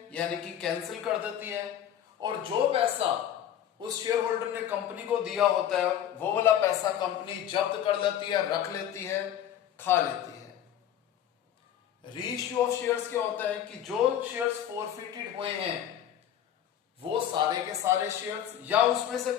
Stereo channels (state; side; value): quieter; right; 10.4 dB